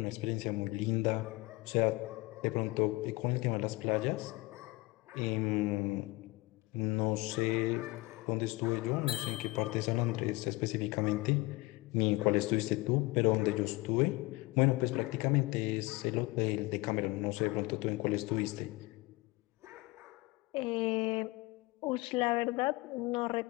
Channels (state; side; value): quieter; right; 22.0 dB